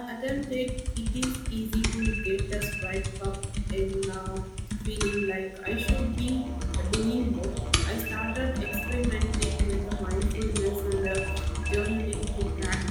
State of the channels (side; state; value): both; identical; correlation 1.00